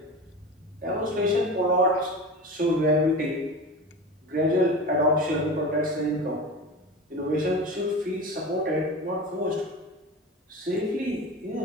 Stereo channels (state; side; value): normal; both; correlation 0.30